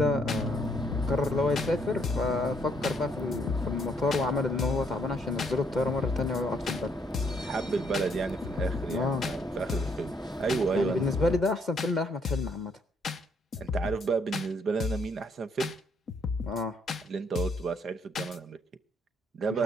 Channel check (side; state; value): both; normal; correlation 0.70